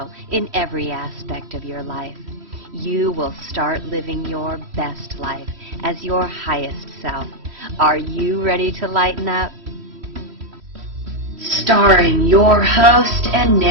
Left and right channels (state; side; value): late; left; 3.1 ms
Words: in every aspect of your life. You will start living your best life as your highest self. Are you ready to lighten up? Starring your host and